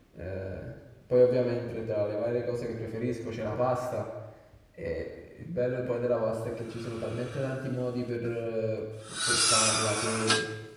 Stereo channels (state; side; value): identical; both; correlation 1.00